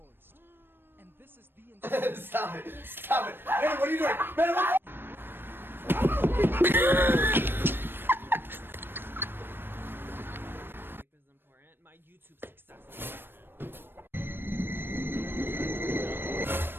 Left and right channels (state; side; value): late; left; 0.099 ms